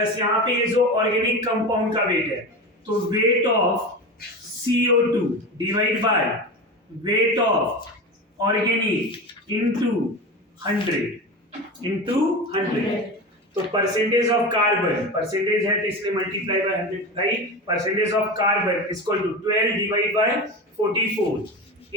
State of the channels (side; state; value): both; normal; correlation 0.26